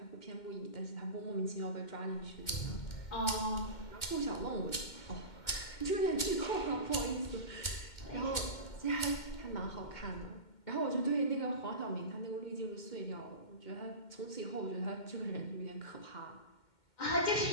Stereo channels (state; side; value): late; right; 2.2 ms